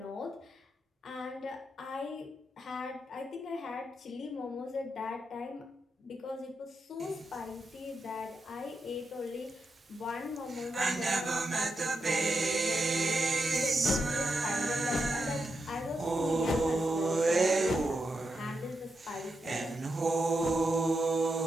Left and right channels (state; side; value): normal; both; correlation 0.85